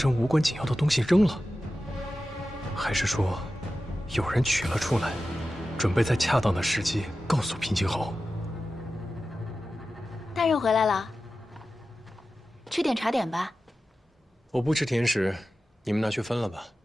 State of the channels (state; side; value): normal; both; correlation 0.94